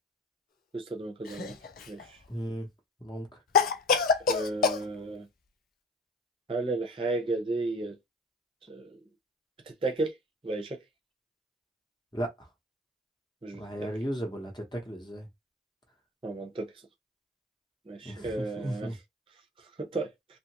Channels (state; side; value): normal; both; correlation 0.38